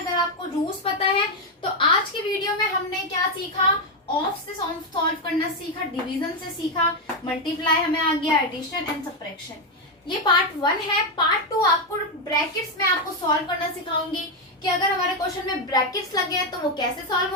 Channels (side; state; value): both; normal; correlation 0.05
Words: आपको रूल्स पता है। तो आज की वीडियो में हमने क्या सीखा, ऑफ से सॉल्व करना सीखा, डिवीजन से सीखा, मल्टीप्लाई हमें आ गया, एडिशन एंड सब्ट्रैक्शन। ये पार्ट 1 है। पार्ट 2 आपको ब्रैकेट्स में आपको सॉल्व करना सिखाऊंगी कि अगर हमारे क्वेश्चन में ब्रैकेट्स लगे हैं तो वो कैसे सॉल्व